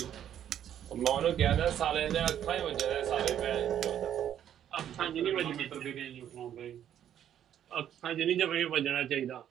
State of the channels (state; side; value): quieter; left; 10.2 dB